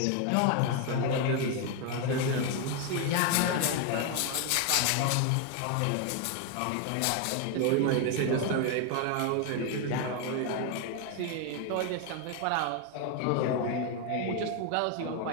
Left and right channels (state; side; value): different; both; correlation 0.01